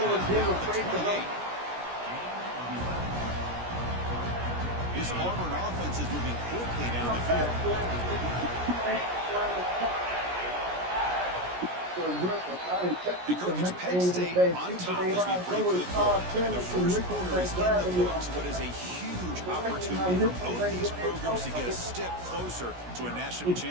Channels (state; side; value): late; left; 17 ms